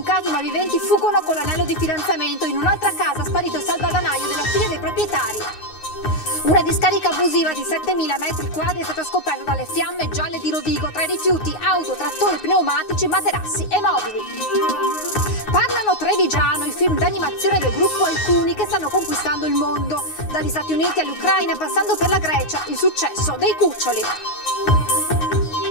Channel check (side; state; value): right; late; 9.6 ms